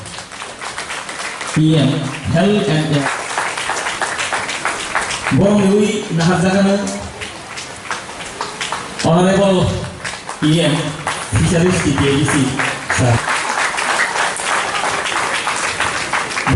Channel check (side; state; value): both; identical; correlation 1.00